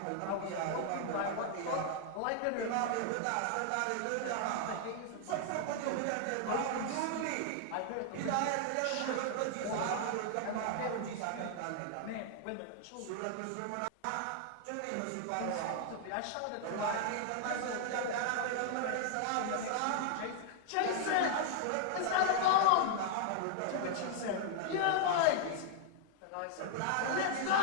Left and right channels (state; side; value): different; both; correlation -0.01